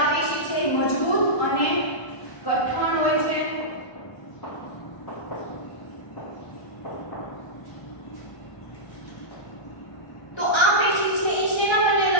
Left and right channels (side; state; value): right; late; 1.1 ms